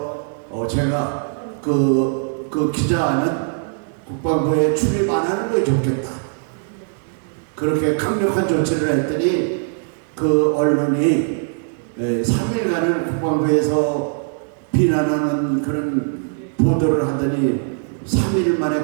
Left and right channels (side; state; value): left; silent; digital silence